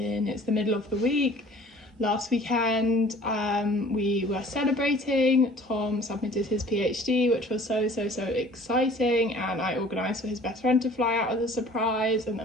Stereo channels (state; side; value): normal; both; correlation 0.49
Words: middle of the week. Last weekend we were celebrating. Tom submitted his PhD, which was so exciting, and I organised for his best friend to fly out as a surprise, and